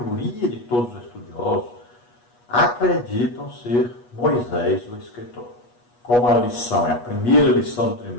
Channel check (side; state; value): right; late; 8.3 ms